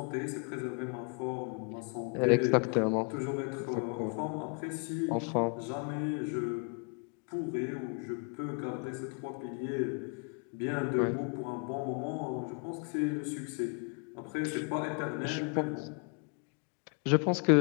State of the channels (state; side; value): quieter; right; 38.3 dB